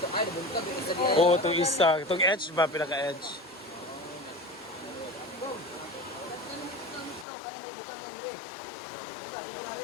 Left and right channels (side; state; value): right; drops out; at 7.2 s